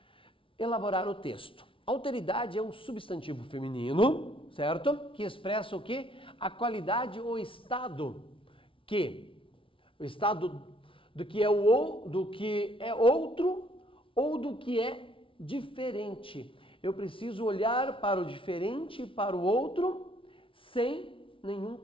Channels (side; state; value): right; late; 0.25 ms